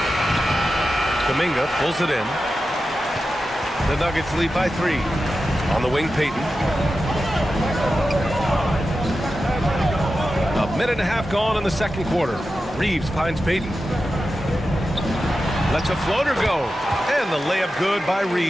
Kuminga pulls it in. The Nuggets lead by 3. On the wing, Payton. A minute and a half gone in the second quarter. Reeves finds Payton. Lets a floater go. And the layup good by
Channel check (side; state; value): both; normal; correlation 0.92